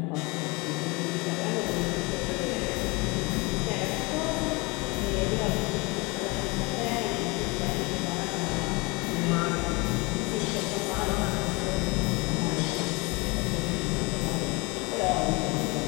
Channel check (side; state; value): right; quieter; 26.7 dB